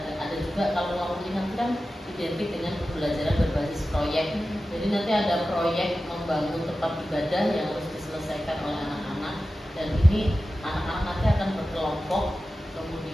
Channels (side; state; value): both; normal; correlation 0.94